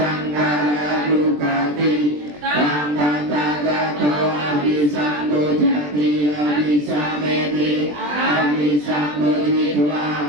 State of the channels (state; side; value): late; left; 20 ms